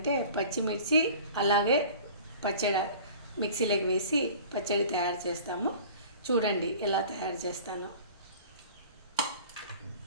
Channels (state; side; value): inverted; both; correlation -0.44